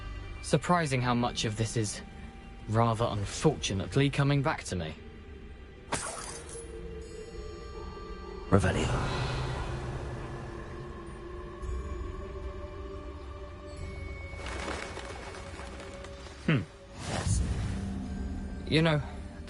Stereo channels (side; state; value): both; identical; correlation 1.00